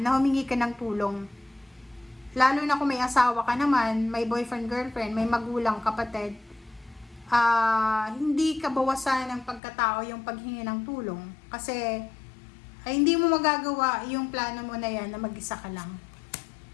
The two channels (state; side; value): drops out; right; at 9.6 s